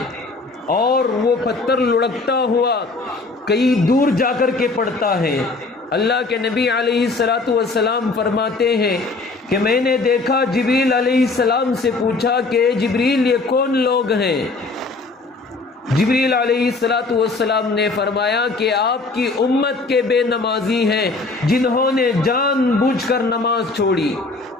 اور وہ پتھر لڑکتا ہوا کئی دور جا کر کے پڑتا ہے۔ اللہ کے نبی علیہ الصلوۃ والسلام فرماتے ہیں کہ میں نے دیکھا، جبریل علیہ السلام سے پوچھا کہ جبریل یہ کون لوگ ہیں؟ جبریل علیہ الصلوۃ والسلام نے فرمایا کہ آپ کی امت کے بے نمازی ہیں جنہوں نے جان بوجھ کر نماز چھوڑی۔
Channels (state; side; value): quieter; right; 3.6 dB